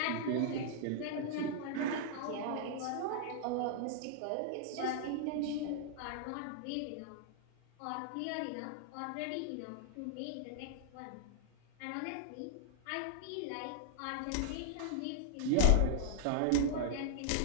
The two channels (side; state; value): both; different; correlation -0.01